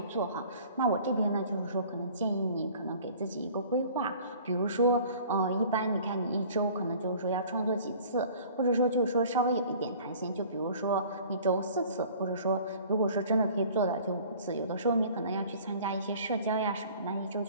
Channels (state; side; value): inverted; both; correlation -0.49